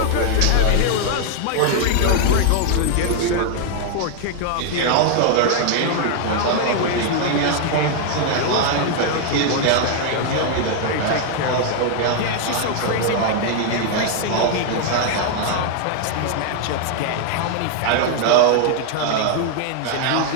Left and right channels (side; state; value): both; different; correlation 0.00